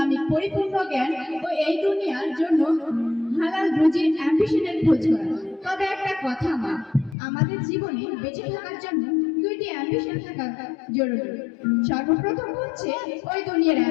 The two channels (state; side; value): drops out; right; at 7.2 s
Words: পরিপূর্ণ জ্ঞান ও এই দুনিয়ার জন্য হালাল রুজির অ্যাম্বিশনের খোঁজ করা তবে একটা কথা মা আমাদের জীবনে বেঁচে থাকার জন্য দুইটি অ্যাম্বিশন থাকা জরুরি সর্বপ্রথম হচ্ছে ওই দুনিয়ার